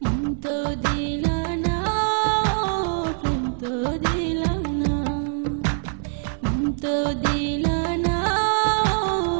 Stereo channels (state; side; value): silent; left; 57 dB below the other